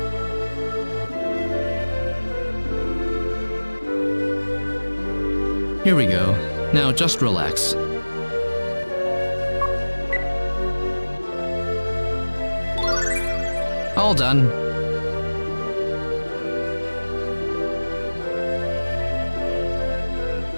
Here we go. Now just relax. All done.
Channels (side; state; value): both; inverted; correlation -1.00